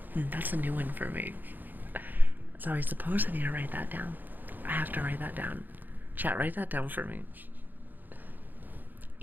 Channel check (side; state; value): left; late; 0.087 ms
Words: That's a new one for me. So I suppose I need to write that down. I have to write that down. Chat, write that down for me.